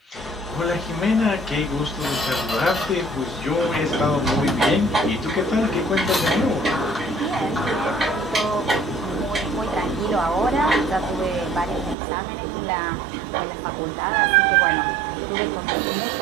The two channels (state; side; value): drops out; left; at 12.0 s